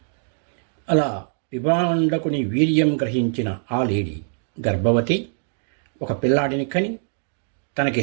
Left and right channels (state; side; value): silent; left; digital silence